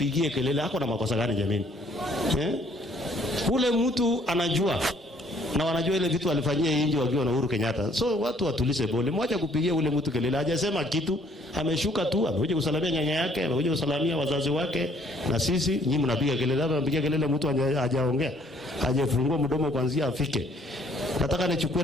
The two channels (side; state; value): both; normal; correlation 0.63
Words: kelele. Hako na makosa gani jameni? Ule mtu anajua na wanajua ile vitu alifanyia nje wakiwa na Uhuru Kenyatta. So watu watulize bole. Mwacha kupigia ule mtu kelele. Hajasema kitu, ameshuka tu, amekuja kusalamia nyanya yake, amekuja kusalamia wazazi wake na sisi. Nyinyi mnapiga kelele, hapa mnapiga kelele mtu hajaongea. Hajafungua mdomo kuanzia afike. Nataka nichukue